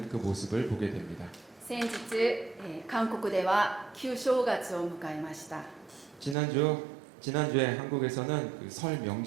그 모습을 보게 됩니다. 先日、韓国では旧正月を迎えました。 지난주에 한국에서는 그 설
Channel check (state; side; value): drops out; left; at 6.4 s